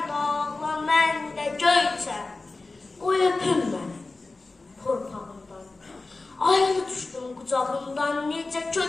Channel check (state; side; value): quieter; right; 3.5 dB